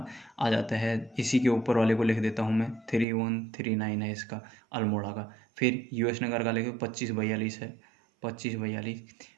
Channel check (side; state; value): left; drops out; at 3.1 s